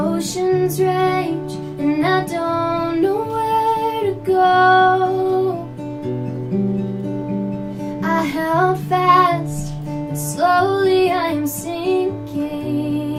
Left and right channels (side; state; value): both; identical; correlation 1.00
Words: rage, and I don't know where to go. I held fast, but slowly I'm sinking